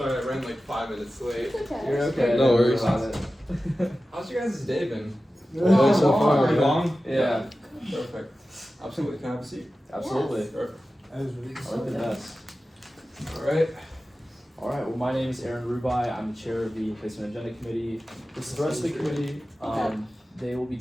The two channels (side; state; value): both; normal; correlation 0.94